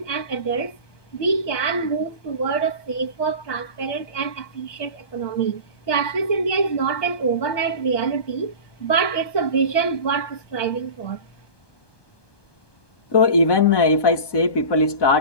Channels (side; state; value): right; late; 1.2 ms